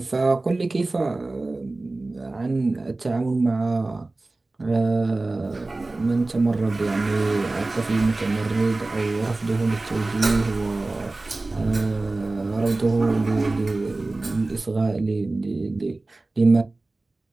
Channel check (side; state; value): left; quieter; 3.1 dB